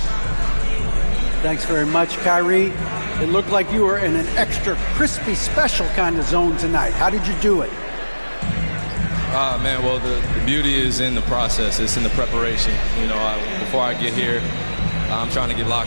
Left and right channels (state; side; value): inverted; both; correlation -1.00